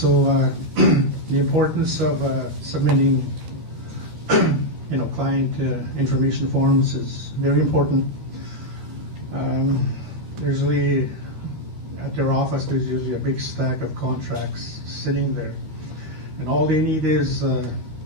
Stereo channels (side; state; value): left; late; 13 ms